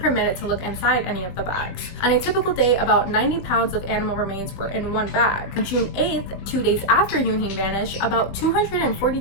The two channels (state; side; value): late; right; 20 ms